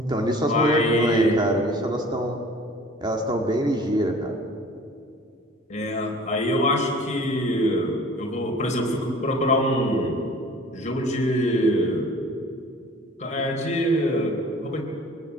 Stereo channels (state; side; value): normal; both; correlation 0.47